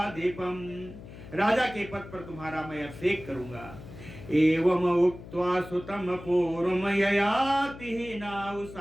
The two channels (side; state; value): left; noise; hum, 15 dB below the sound